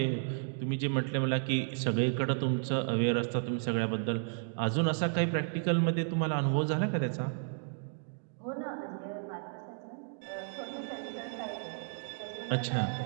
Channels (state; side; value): silent; left; digital silence